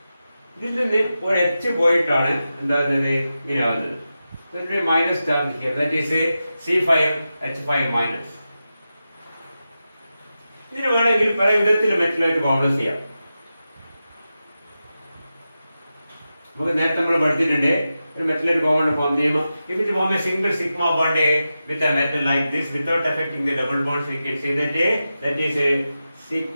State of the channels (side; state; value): both; inverted; correlation -0.91